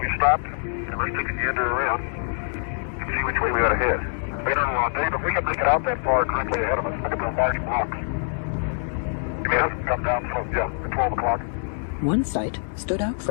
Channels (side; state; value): right; silent; digital silence